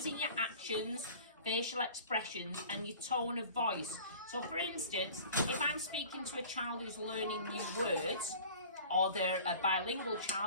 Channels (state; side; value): inverted; both; correlation -0.44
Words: your actions, facial expressions and your tone of voice. So for instance, if I'm speaking to a child who's learning new words, or they're a bilingual